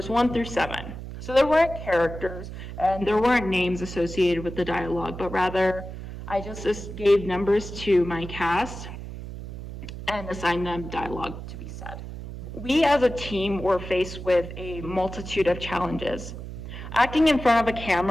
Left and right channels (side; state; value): right; noise; hum, 10 dB below the sound